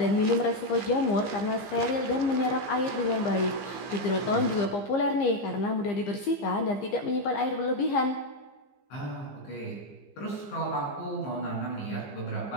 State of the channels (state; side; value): late; right; 15 ms